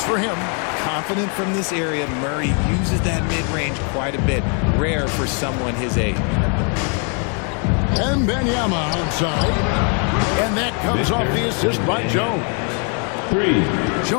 for him. Confident from this area, Murray uses that mid-range quite a bit. Rare for someone his age. Wembanyama outside. And that comes off the assist by Jones. 3.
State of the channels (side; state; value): right; quieter; 39.0 dB